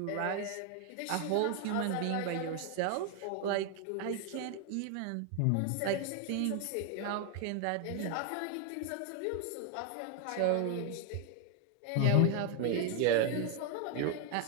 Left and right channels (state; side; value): different; both; correlation 0.01